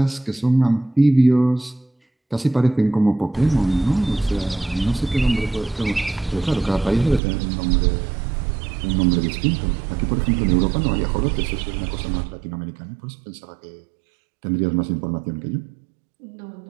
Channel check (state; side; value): drops out; left; at 7.2 s